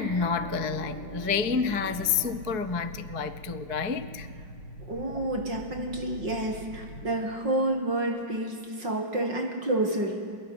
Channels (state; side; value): late; left; 4.7 ms